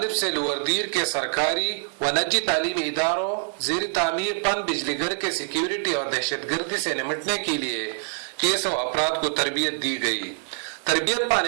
से लोअरदीर के सरकारी व निजी तालीमी इदारों ज़ेर तामीर पन बिजली घर के सिक्योरिटी और दहशतगर्दी से निपटने के लिए केस और अफराद को तरबियत दी गई। तरबियत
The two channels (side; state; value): left; silent; digital silence